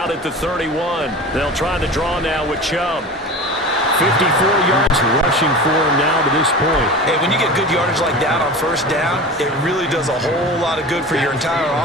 at the 31. They'll try the draw now with Chubb. 54 yards rushing for him now to this point. Hey, when you get good yardage like that on 1st down, it really does a whole lot of good for your entire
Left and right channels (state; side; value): normal; both; correlation 0.33